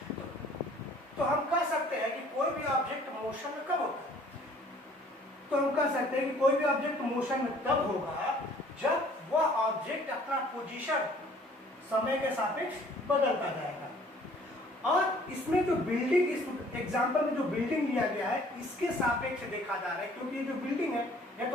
तो हम कह सकते हैं कि कोई भी ऑब्जेक्ट मोशन में कब होता है? तो हम कह सकते हैं कि कोई भी ऑब्जेक्ट मोशन में तब होगा जब वह ऑब्जेक्ट अपना पोजीशन समय के सापेक्ष बदलता जाएगा। और इसमें जो बिल्डिंग, इस एग्जांपल में जो बिल्डिंग लिया गया है इसके सापेक्ष देखा जा रहा है, क्योंकि ये जो बिल्डिंग है यह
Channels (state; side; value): normal; both; correlation 0.56